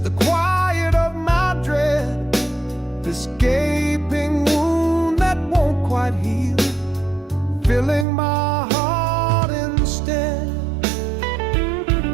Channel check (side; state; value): left; drops out; at 8.1 s